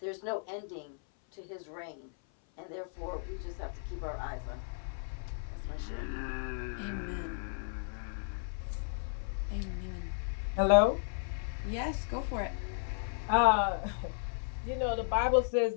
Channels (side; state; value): right; silent; 55 dB below the other